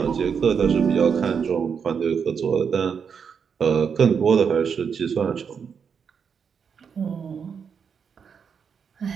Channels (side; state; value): left; quieter; 6.6 dB